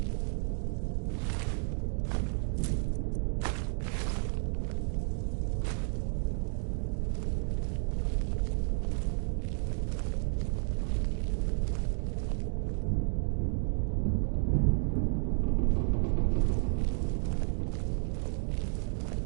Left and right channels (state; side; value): silent; left; digital silence